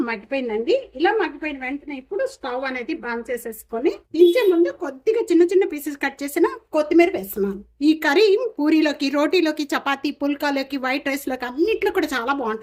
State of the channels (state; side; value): identical; both; correlation 1.00